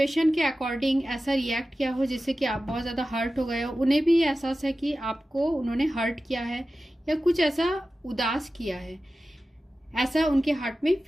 के अकॉर्डिंग ऐसा रिएक्ट किया हो जिससे कि आप बहुत ज़्यादा हर्ट हो गए हो। उन्हें भी एहसास है कि आपको उन्होंने हर्ट किया है या कुछ ऐसा उदास किया है, ऐसा उनके हार्ट में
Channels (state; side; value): normal; both; correlation 0.94